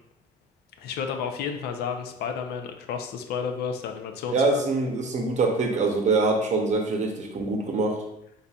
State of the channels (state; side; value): normal; both; correlation 0.36